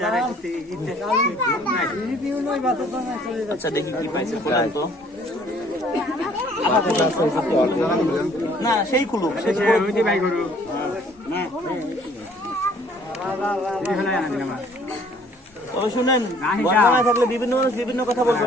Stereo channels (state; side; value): normal; both; correlation 0.58